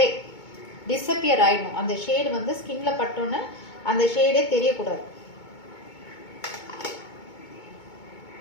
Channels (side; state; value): right; late; 2.2 ms